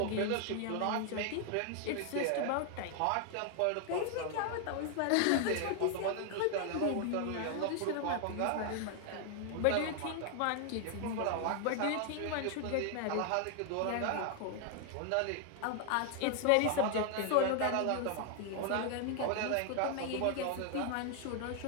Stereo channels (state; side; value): different; both; correlation 0.00